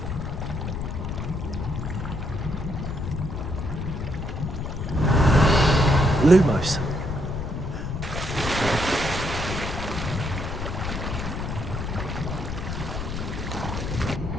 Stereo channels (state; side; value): noise; left; rumble, 5 dB below the sound